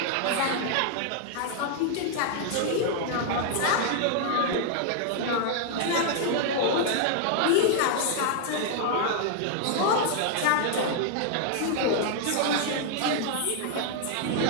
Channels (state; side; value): different; both; correlation 0.00